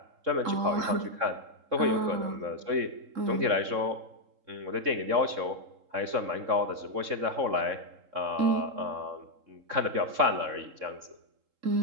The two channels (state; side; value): late; left; 3.7 ms